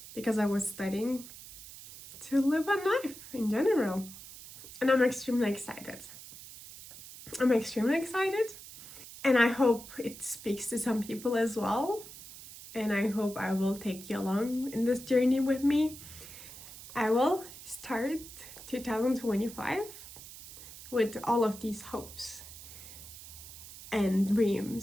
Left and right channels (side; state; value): right; noise; hiss, 15 dB below the sound